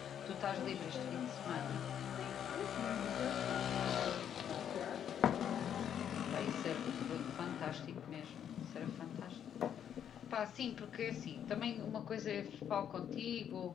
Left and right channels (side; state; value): right; quieter; 9.1 dB